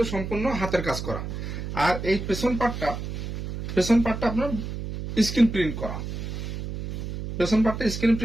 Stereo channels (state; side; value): noise; right; hum, 6 dB below the sound